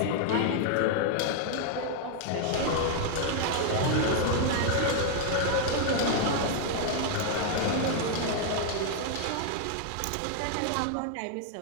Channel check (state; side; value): different; both; correlation 0.00